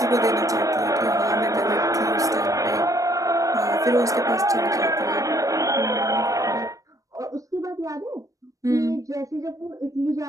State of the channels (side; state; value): left; late; 0.16 ms